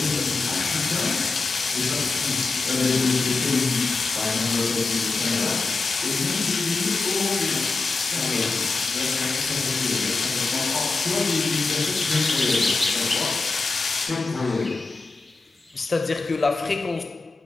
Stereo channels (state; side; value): quieter; right; 3.9 dB